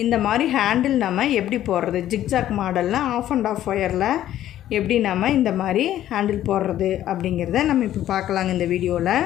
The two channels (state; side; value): quieter; right; 12.4 dB